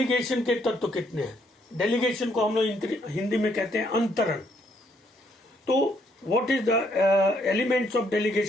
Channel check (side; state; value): both; normal; correlation 0.70